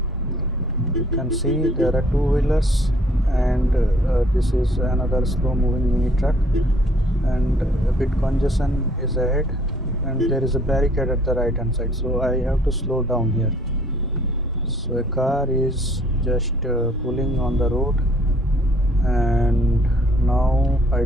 You can see there are two-wheelers and this is another slow moving mini truck and a bit congestion is ahead and there is a barricade at the right hand side, so I have to slow down here. So a car is just pulling on the road and now I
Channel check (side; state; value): both; normal; correlation 0.61